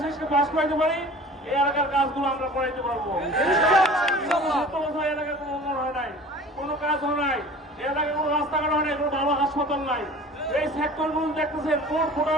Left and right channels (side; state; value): both; normal; correlation 0.43